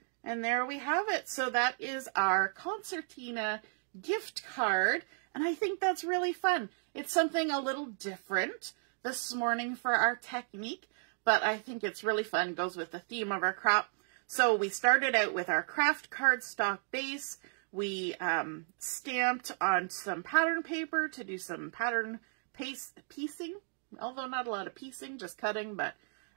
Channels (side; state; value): left; silent; 55 dB below the other